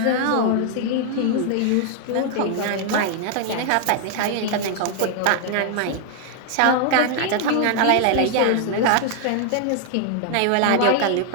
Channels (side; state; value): both; different; correlation 0.00